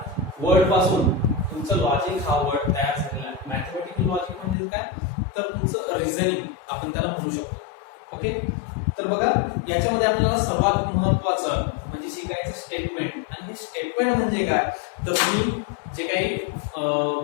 वर्ड पासून तुमचं लॉजिक हा वर्ड तयार झालेला आहे. मॅथमॅटिकल लॉजिक म्हणजे काय, तर तुमचं रिझनिंग आपण त्याला म्हणू शकतो. ओके, तर बघा याच्यामध्ये आपल्याला सर्वात महत्वाचं म्हणजे शिकायचं स्टेटमेंट. आणि हे स्टेटमेंट म्हणजे काय, तर तुम्ही जे काही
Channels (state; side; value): drops out; right; at 4.5 s